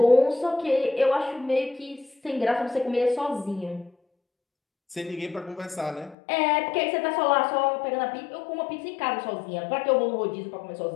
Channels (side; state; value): right; drops out; at 6.2 s